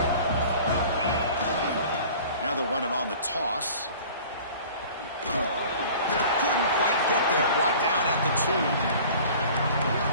Now they'll run it on the toss. Couldn't quite get there. Brought down at the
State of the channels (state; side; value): inverted; both; correlation -0.45